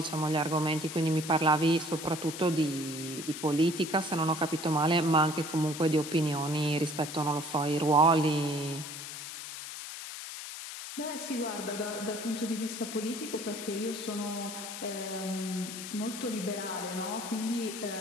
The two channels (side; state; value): left; noise; hiss, 9 dB below the sound